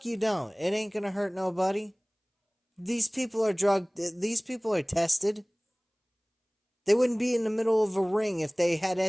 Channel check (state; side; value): identical; both; correlation 1.00